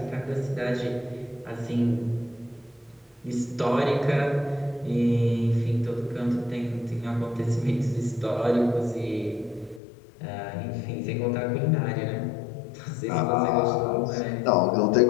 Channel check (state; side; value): drops out; right; at 9.8 s